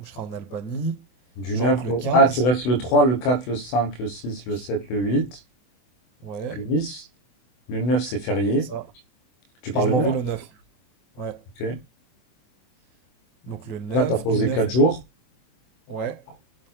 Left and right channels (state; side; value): late; right; 24 ms